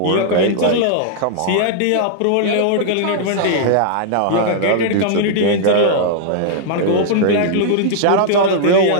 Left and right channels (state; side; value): different; both; correlation -0.01